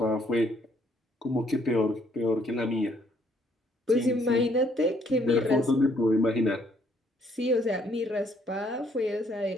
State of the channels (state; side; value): normal; both; correlation 0.67